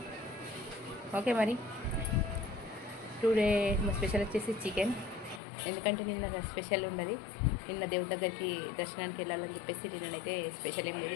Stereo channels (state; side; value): drops out; right; at 5.4 s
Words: ఓకే, మరి టుడే మా స్పెషల్ వచ్చేసి చికెన్. ఎందుకంటే నిన్న స్పెషల్ ఉన్నది, నిన్న దేవుడి దగ్గరికి దర్శనానికి వెళ్ళాలని చెప్పేసి నిన్ననైతే స్పెషల్ ఏం లేదు.